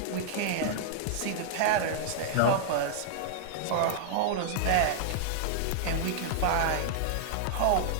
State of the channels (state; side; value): different; both; correlation -0.01